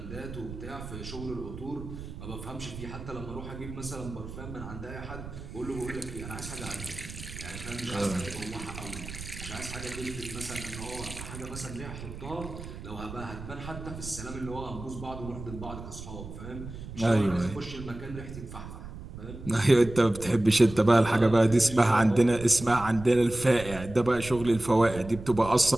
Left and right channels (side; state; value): right; noise; rumble, 11 dB below the sound